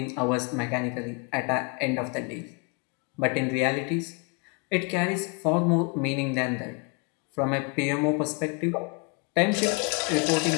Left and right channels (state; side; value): quieter; right; 33.4 dB